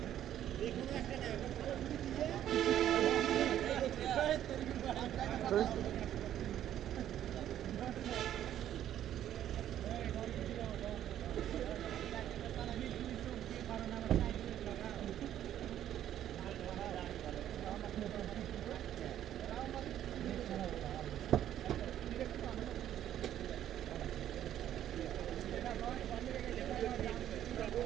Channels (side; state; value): left; quieter; 11.3 dB